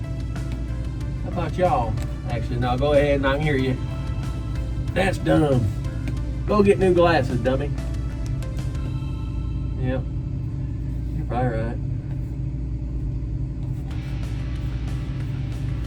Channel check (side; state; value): both; identical; correlation 1.00